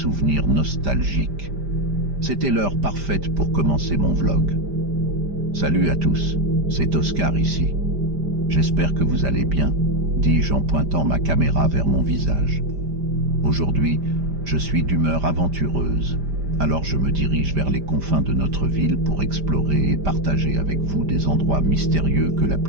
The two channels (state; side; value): late; left; 5.0 ms